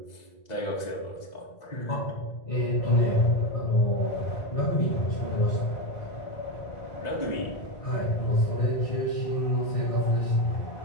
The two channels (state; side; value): late; right; 2.0 ms